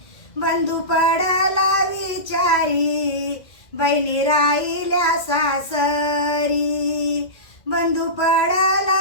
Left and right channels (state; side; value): late; right; 2.0 ms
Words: बंधू पडला विचारी बहिणी राहिल्या सासरी. बंधू